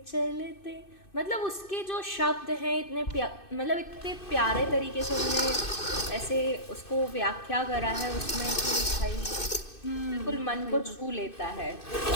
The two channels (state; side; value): late; right; 2.6 ms